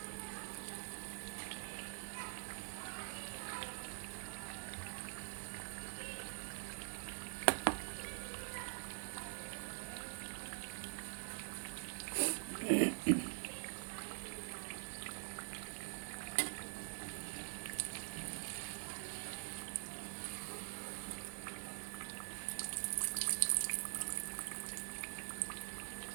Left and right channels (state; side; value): silent; left; digital silence